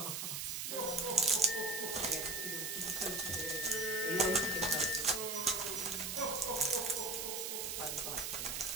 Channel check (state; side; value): noise; right; hiss, 3 dB below the sound